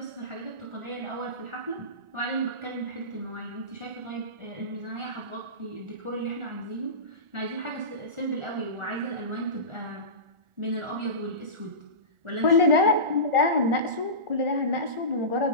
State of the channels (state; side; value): late; left; 1.4 ms